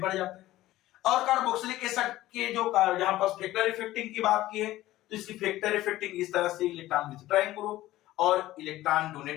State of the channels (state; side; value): quieter; right; 15.8 dB